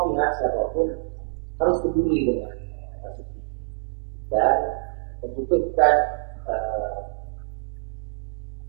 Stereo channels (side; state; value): left; quieter; 37.9 dB